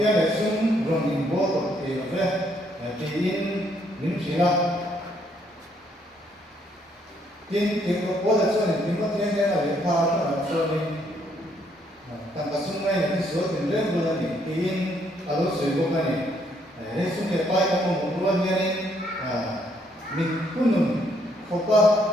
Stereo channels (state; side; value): normal; both; correlation 0.70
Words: le sum rong ni bol ko te lo ve ti in nim sila tiên có bố là cho nên tiên có tiên cái là để pha là cho nên tăng cả xung quanh cái số tiền rất là nhiều tiên ở đó sử dụng cái này để xung quanh bay có một luôn như này mình cũng nằm không qua